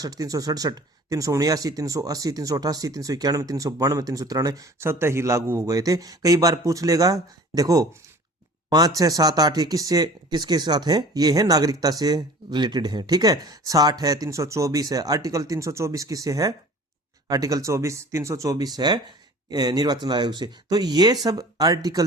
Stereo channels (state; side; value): normal; both; correlation 0.45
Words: 367, 379, 380, 388, 391, 392, 393 स्वतः ही लागू हो गए थे। कई बार पूछ लेगा, देखो 5, 6, 7, 8 ये किसके साथ है? ये है नागरिकता से रिलेटेड है, ठीक है। 60 है, 324 है, आर्टिकल 324 किससे है? आर्टिकल 324 है निर्वाचन आयोग से। तो ये सब